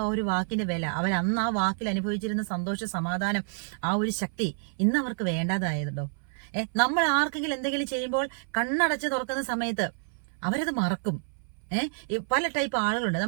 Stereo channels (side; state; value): left; silent; 59 dB below the other